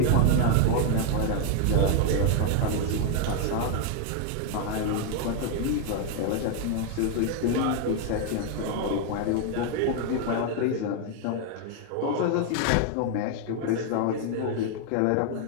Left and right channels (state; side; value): different; both; correlation 0.00